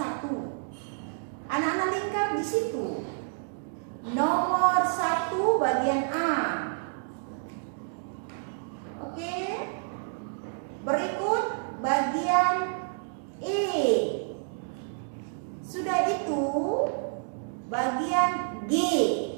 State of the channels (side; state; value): left; silent; digital silence